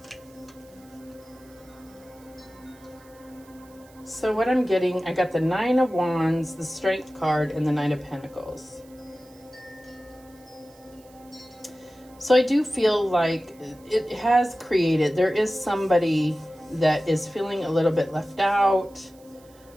So what I'm getting, I got the Nine of Wands, the Strength card, and the Knight of Pentacles. So I do feel like it has created, there is somebody that is feeling a little bit left out,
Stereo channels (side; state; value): right; noise; hiss, 28 dB below the sound